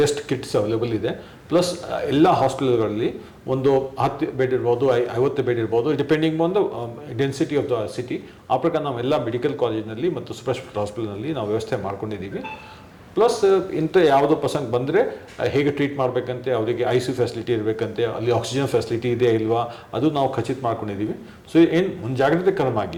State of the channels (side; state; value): both; identical; correlation 1.00